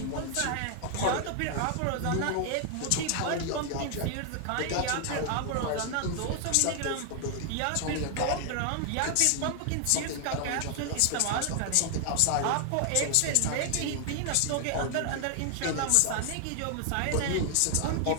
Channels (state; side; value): different; both; correlation 0.00